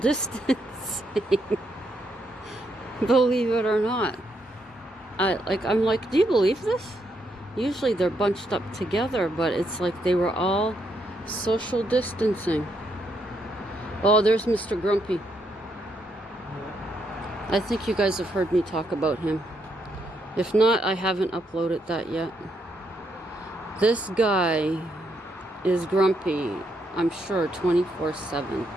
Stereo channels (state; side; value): normal; both; correlation 0.77